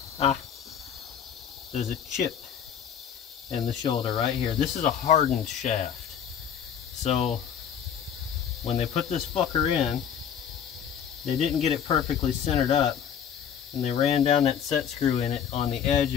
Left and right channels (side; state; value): right; quieter; 8.4 dB